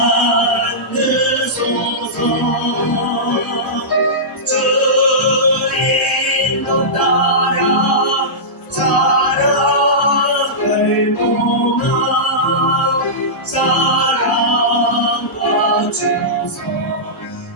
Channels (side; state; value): both; normal; correlation -0.16